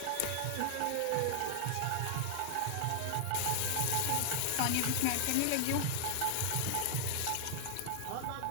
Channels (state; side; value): different; both; correlation 0.00